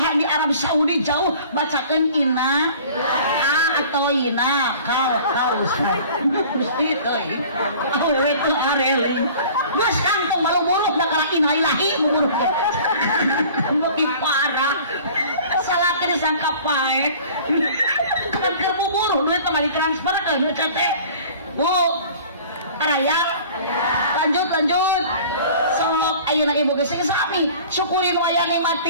di Arab Saudi jauh bacakeun ina atau ina kal ustaz gusti teh awewe teu arele geus kantong malu buruk da kala ina ilahi buruk beuki parah salaki disangka paek kan keur bubur duit mah ditransfer ke CT bu araya lanjut sok ayeuna ibu geus sami syukuri nu aya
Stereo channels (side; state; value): both; inverted; correlation -0.46